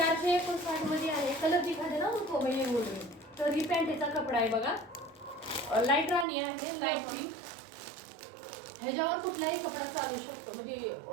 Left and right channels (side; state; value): left; drops out; at 6.2 s